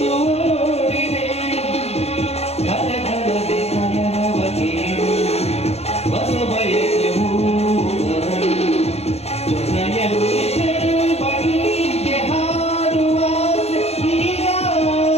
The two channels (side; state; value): right; late; 0.30 ms